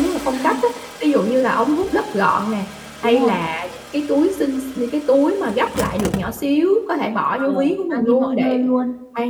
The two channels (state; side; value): identical; both; correlation 1.00